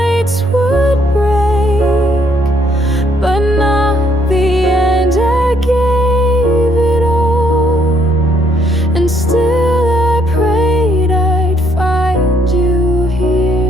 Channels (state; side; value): normal; both; correlation 0.69